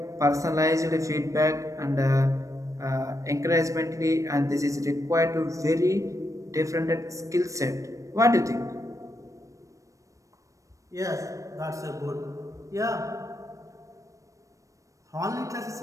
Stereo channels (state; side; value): late; left; 0.16 ms